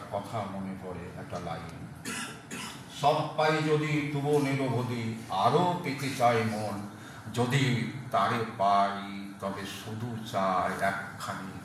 কথা মনে পড়ে, একটা লাইন, সব পাই যদি তবু নিরবধি, আরও পেতে চাই মন, যদি তারে পাই তবে শুধু চাই একখানি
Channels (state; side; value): identical; both; correlation 1.00